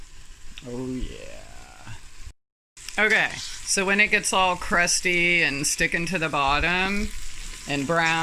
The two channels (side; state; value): both; identical; correlation 1.00